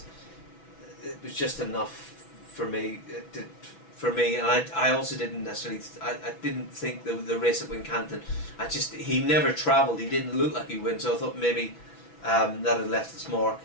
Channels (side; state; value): right; late; 6.0 ms